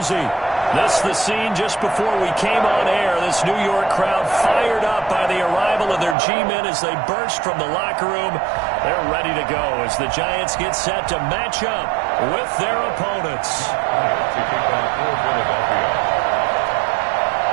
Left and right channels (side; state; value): left; drops out; at 6.2 s